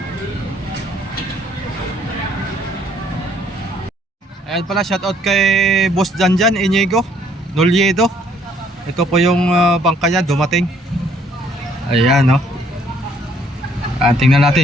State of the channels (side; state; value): both; normal; correlation 0.64